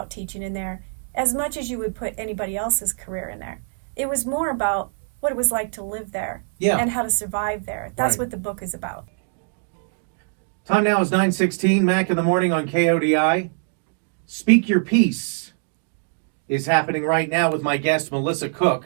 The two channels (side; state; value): left; silent; digital silence